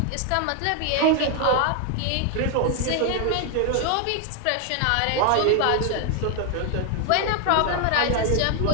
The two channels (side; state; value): both; different; correlation 0.00